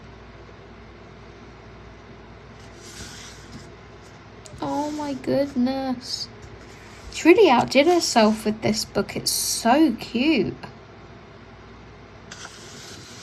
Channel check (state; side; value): identical; both; correlation 1.00